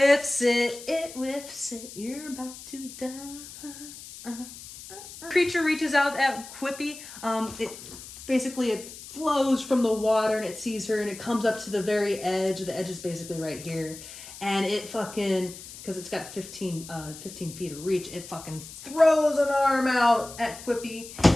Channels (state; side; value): noise; left; hiss, 14 dB below the sound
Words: it. It whiffs it. You're about to die. Creature reaches out at Quippy. It flows from the water, and it sees her, and it comes up to the very edge. The edge is basically right here. And it fucking, because it's got 15 feet of reach, it fucking throws an arm out at Quippy